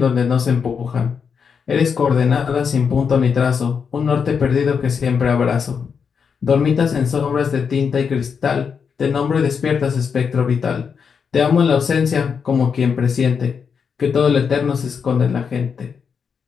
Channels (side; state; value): right; quieter; 6.3 dB